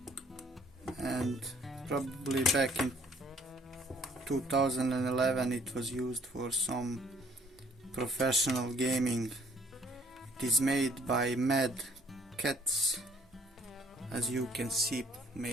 and probably back in 2011 it was used for some professional gaming. It is made by MadCatz, as you can see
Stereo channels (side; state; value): both; normal; correlation 0.60